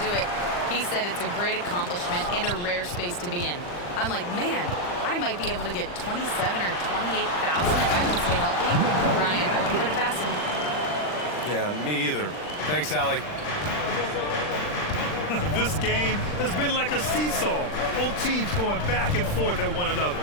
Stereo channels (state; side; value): late; right; 40 ms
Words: it. He said it's a great accomplishment and a rare space to be in. I'm like, man, I might be able to get 27 or 28,000 if I can stay healthy. Brian, I wouldn't put it past him. Yeah, me either. Thanks, Allie. This game has been like a seesaw. Both teams going back and forth at one another.